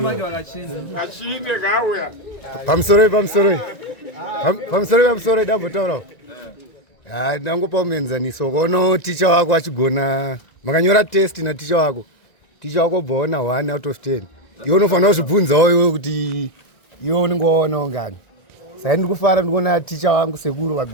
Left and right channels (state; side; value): late; right; 1.9 ms